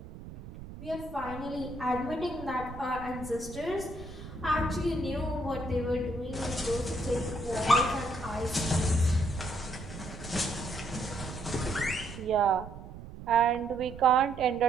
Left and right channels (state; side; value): noise; right; rumble, 13 dB below the sound